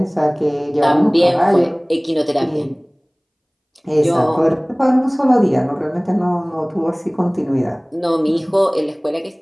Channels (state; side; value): identical; both; correlation 1.00